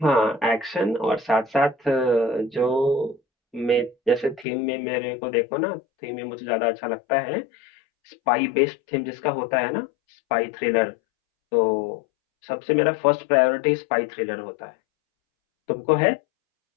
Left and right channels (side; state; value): right; drops out; at 4.5 s